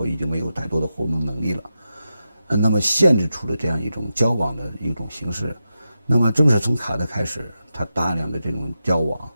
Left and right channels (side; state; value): both; inverted; correlation -0.89